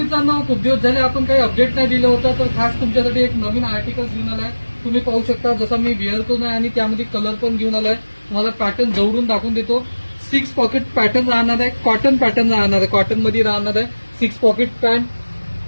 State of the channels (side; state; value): both; inverted; correlation -1.00